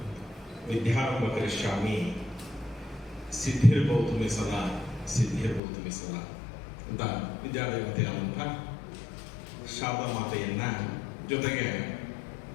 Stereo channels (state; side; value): drops out; right; at 5.6 s